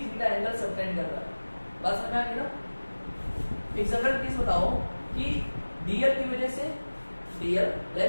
थीटा एंगल सबटेंड कर रहा है। बात समझ आ गई ना? एक जनरल केस बताओ कि डीएल की वजह से, डीएल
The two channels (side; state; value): both; inverted; correlation -1.00